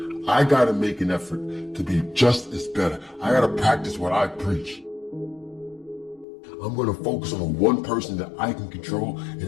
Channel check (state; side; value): drops out; right; at 6.2 s